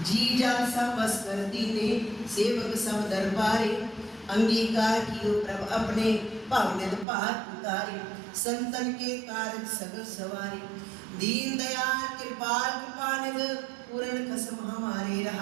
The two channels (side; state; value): left; drops out; at 7.1 s